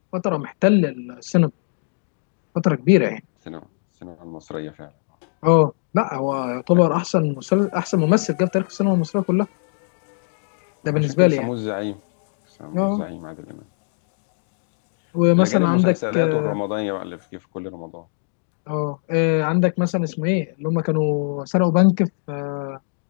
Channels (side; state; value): right; silent; 61 dB below the other